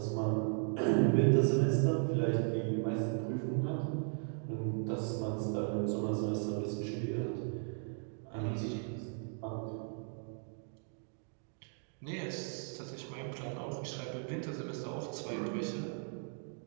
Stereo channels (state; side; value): silent; left; 53 dB below the other